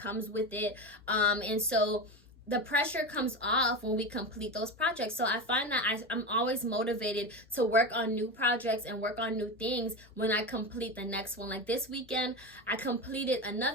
with it, and so the pressure comes off when we complete those projects. So I find that I'm always motivated to work on new projects and work on new things when I complete the next one. Like this weekend, I completed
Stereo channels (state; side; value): normal; both; correlation 0.21